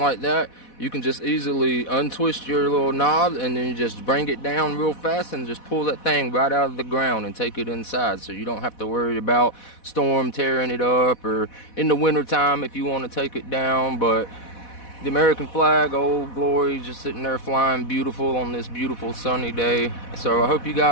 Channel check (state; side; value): late; right; 4.1 ms